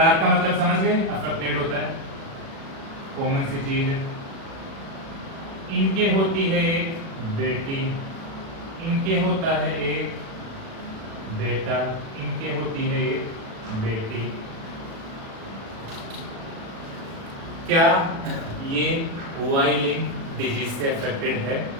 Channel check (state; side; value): late; left; 36 ms